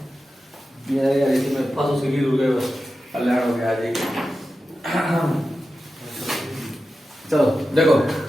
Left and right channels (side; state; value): both; normal; correlation 0.92